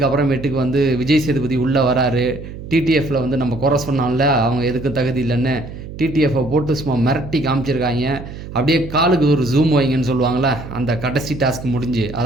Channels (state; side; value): noise; right; hum, 12 dB below the sound